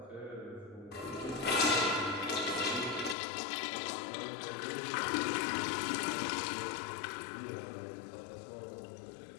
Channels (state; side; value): drops out; right; at 3.2 s